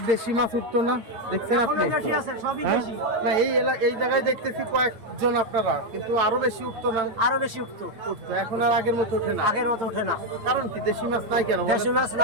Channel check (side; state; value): left; late; 8.8 ms